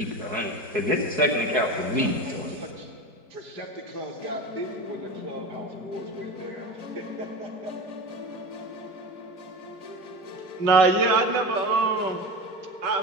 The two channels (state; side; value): late; left; 4.6 ms